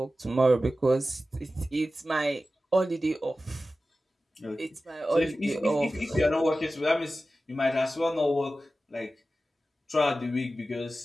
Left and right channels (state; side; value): normal; both; correlation 0.94